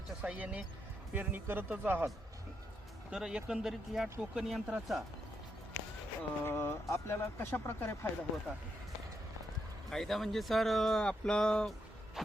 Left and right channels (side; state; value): both; normal; correlation 0.81